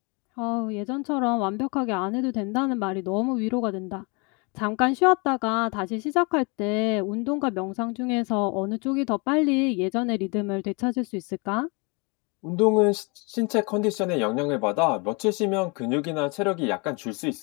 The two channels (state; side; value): quieter; right; 30.9 dB